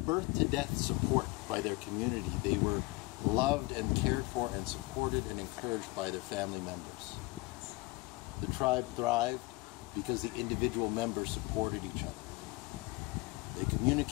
birth to death support by their community. They were loved and cared for and supported and encouraged by their family members. The tribe thrived because the individual members supported each other. They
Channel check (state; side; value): quieter; right; 23.3 dB